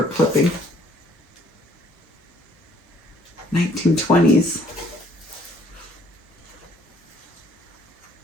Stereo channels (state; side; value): normal; both; correlation 0.62